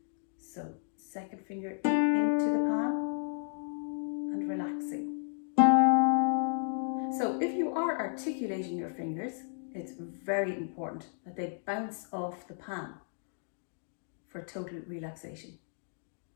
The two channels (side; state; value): right; silent; digital silence